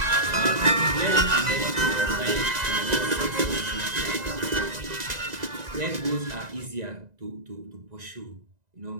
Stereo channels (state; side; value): late; left; 1.9 ms